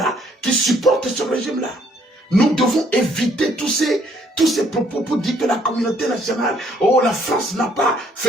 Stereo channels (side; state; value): both; normal; correlation 0.65